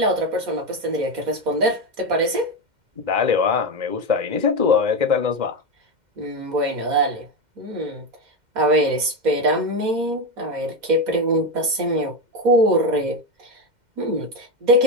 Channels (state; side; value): late; left; 2.1 ms